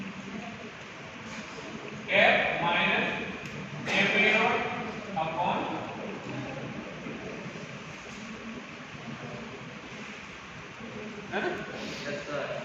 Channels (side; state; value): both; identical; correlation 1.00